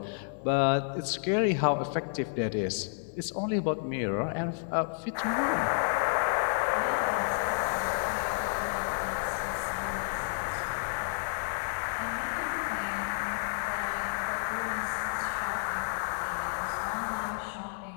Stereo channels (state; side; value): silent; right; 57 dB below the other